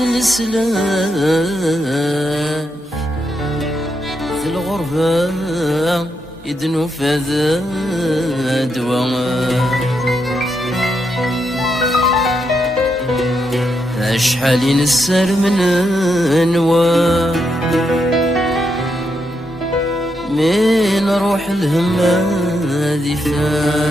السلاح في الغربة يدنو فذا دواء أشحال نسر من أنواع من روح الهمة ذي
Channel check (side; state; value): both; normal; correlation 0.81